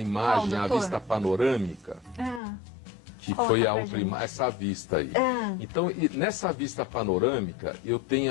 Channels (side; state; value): right; drops out; at 2.4 s